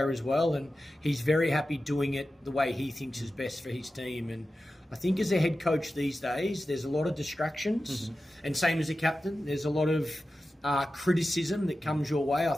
as well, and he's very happy doing it the way he thinks is best for his team. And I think as a head coach these days, there's a lot of distractions, and same as a captain, there's a lot of criticism that comes your way. I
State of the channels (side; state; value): both; normal; correlation 0.93